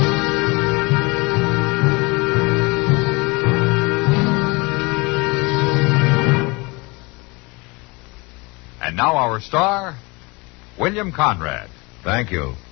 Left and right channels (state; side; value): quieter; right; 26.3 dB